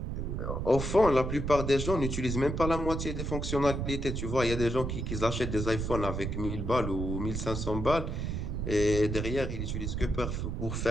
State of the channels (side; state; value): right; noise; rumble, 3 dB below the sound